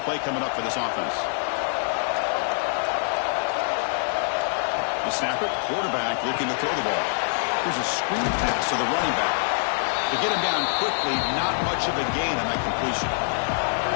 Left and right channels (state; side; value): silent; right; digital silence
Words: play coming up for this offense. The snapper, quarterback, looking to throw the ball. Here's a screen pass to the running back. To get him down quickly, not much of a gain on that completion.